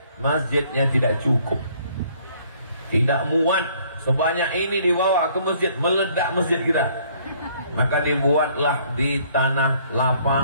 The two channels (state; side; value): inverted; both; correlation -0.62